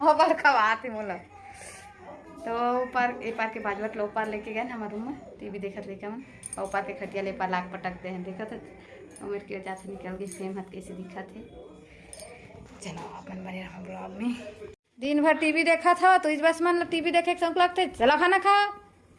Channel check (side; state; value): both; identical; correlation 1.00